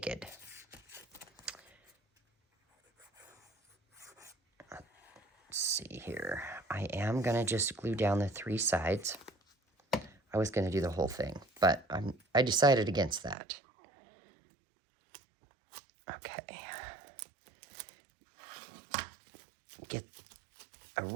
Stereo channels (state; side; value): drops out; left; at 13.4 s